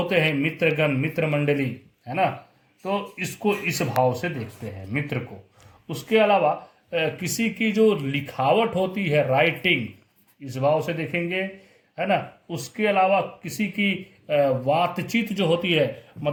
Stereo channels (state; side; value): identical; both; correlation 1.00